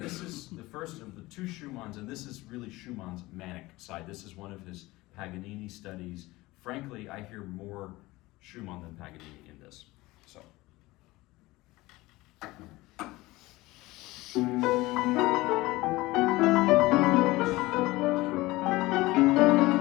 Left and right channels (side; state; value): right; quieter; 19.9 dB